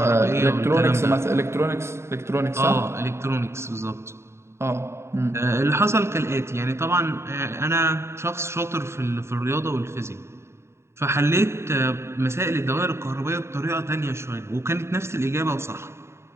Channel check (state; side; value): late; left; 0.13 ms